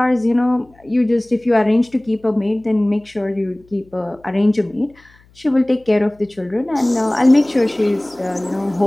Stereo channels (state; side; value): noise; left; hum, 30 dB below the sound